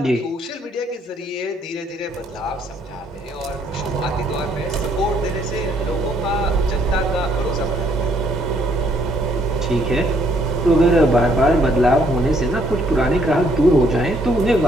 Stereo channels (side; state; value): both; normal; correlation 0.68